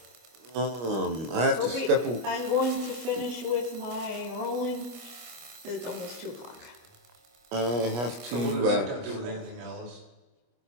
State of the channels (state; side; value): late; left; 25 ms